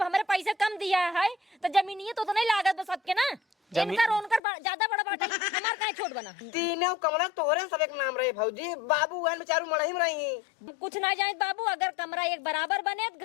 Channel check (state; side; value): drops out; right; at 4.4 s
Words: हमारे पैसे कम दिया है तो जमीनिए तो नहीं लागत बस सबके ना इनका रोनकर ज्यादा बड़ा बाटा हमार काहे छोट बना तीनों कमरा तोरे सब एक नाम रहे भौजी बाबू गन बेचारू मड़ही में रही कुछ ना जाए बाबू अगर कमरा एक बराबर बने